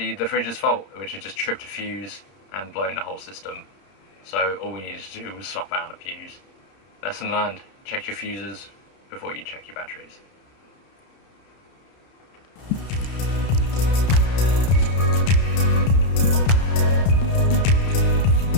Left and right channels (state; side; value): late; right; 31 ms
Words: the fridge's fault, which had just tripped a fuse and blown the whole system. So all we needed to do was swap out a fuse. Lesson learned, check your fuses before you check your batteries.